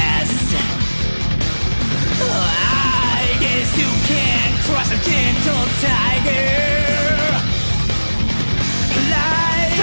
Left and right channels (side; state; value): both; inverted; correlation -1.00